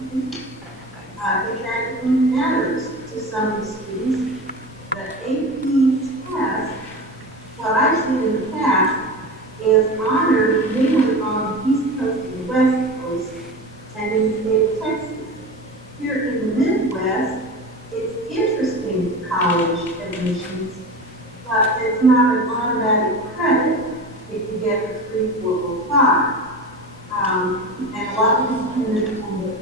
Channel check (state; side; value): normal; both; correlation 0.29